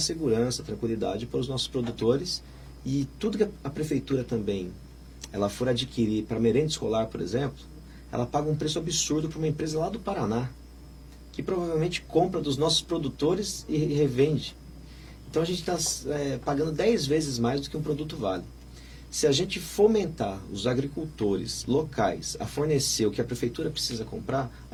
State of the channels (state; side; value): identical; both; correlation 1.00